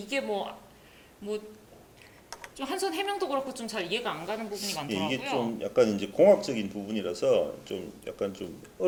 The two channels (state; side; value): identical; both; correlation 1.00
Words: 뭐 좀 한선 해명도 그렇고 좀 잘 이해가 안 가는 부분이 예, 많더라고요. 이게 좀 약간 이제 공학적인 부분이라서 좀 약간 좀